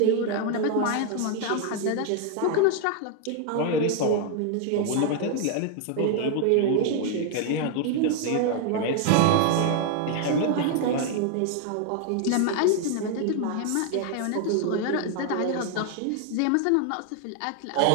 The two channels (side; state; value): both; different; correlation 0.00